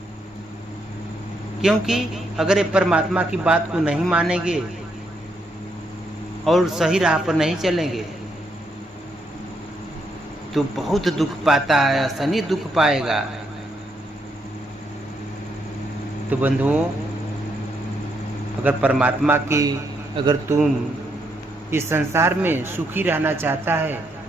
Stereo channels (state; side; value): normal; both; correlation 0.77